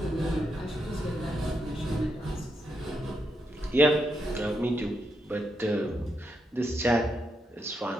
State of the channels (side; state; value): both; normal; correlation 0.82